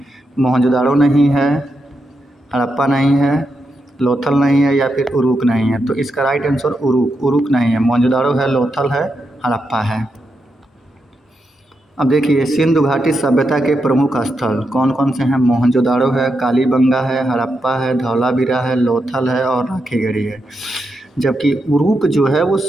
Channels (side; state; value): both; normal; correlation 0.85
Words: मोहनजोदाड़ो नहीं है, हड़प्पा नहीं है, लोथल नहीं है या फिर उरुक नहीं है? तो इसका राइट आंसर उरुक नहीं है। मोहनजोदाड़ो है, लोथल है, हड़प्पा है। अब देखिए, सिंधु घाटी सभ्यता के प्रमुख स्थल कौन कौन से हैं? मोहनजोदाड़ो है, कालीबंगा है, हड़प्पा है, धौलावीरा है, लोथल है और राखीगढ़ी है। जबकि उरुक जो है वो